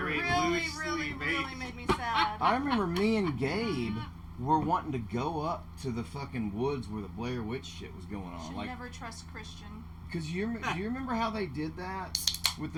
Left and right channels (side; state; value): both; identical; correlation 1.00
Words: really, Loosely really based. made me sad. I remember me and Gabe were wanting to go up to the fucking woods where the Blair Witch shit was going on. Should Like, never trust Christian. cause do you remember how they did that with